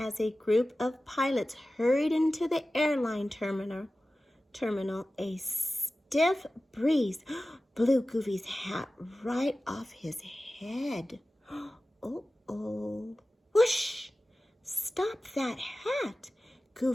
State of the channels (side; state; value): both; normal; correlation 0.96